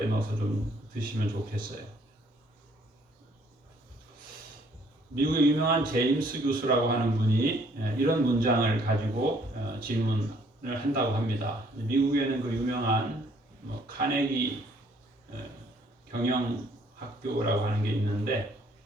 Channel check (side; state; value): both; normal; correlation 0.63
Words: 넣어서 좀 드시면 좋겠어요. 미국의 유명한 제임스 교수라고 하는 분이 이런 문장을 가지고 질문을 한다고 합니다. 미국에는 그 유명한 카네기 경영학교라고 하는 게 있는데